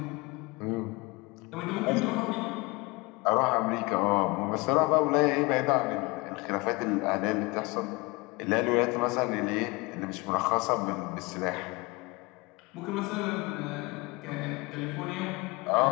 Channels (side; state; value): right; quieter; 25.4 dB